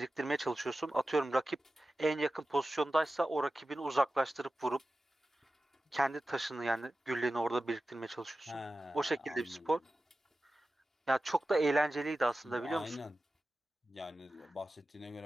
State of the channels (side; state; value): both; normal; correlation 0.94